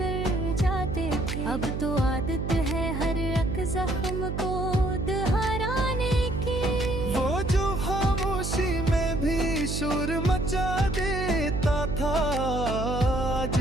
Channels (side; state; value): right; noise; hum, 3 dB below the sound